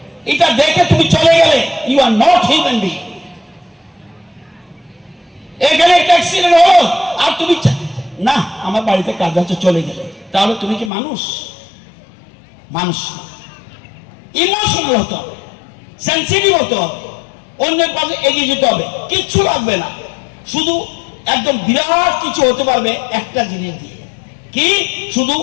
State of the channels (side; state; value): right; drops out; at 10.9 s